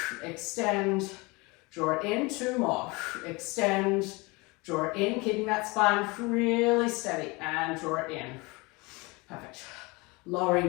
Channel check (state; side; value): quieter; right; 25.6 dB